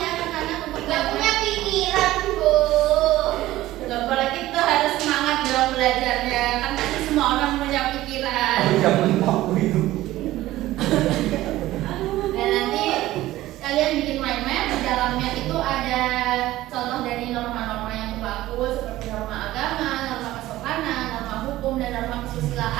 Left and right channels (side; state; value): left; quieter; 15.9 dB